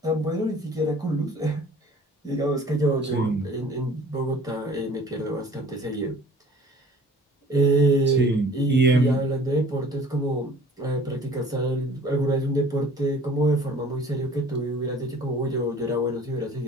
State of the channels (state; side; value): normal; both; correlation 0.49